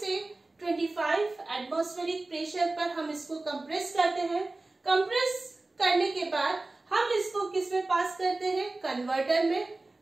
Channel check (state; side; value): quieter; left; 3.1 dB